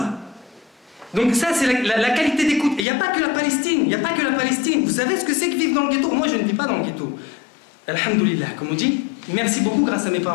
Donc ça, c'est la qualité d'écoute. Et il n'y a pas que la Palestine, il n'y a pas que la Palestine. Vous savez ce que c'est que vivre dans le ghetto? Moi, je ne vis pas dans le ghetto. Alhamdoulilah, comme on dit. Merci beaucoup grâce à mes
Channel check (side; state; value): right; drops out; at 2.9 s